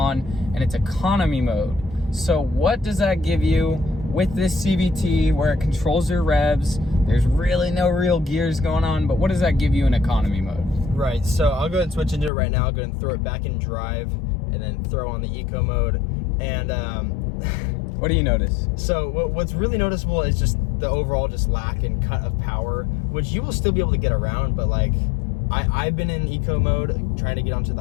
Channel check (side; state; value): right; drops out; at 12.3 s